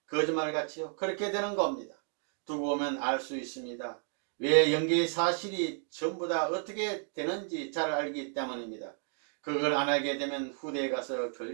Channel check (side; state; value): left; silent; 56 dB below the other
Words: 거짓말같이요. 그렇게 되는 겁니다. 두고 보면 알 수 있습니다. 왜 영계의 사실이 전부 다 어떻게 되는지 잘 알기 때문입니다. 그걸 안 하게 되면 후대에 가서